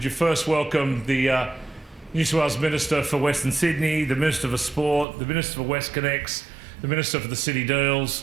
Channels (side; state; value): left; drops out; at 5.1 s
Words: you first welcome the New South Wales Minister for Western Sydney, the Minister for Sport, the Minister for WestConnex, the Minister for the City